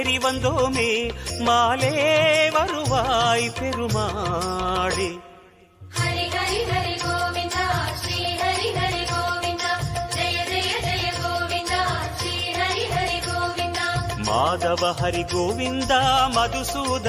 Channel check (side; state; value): both; identical; correlation 1.00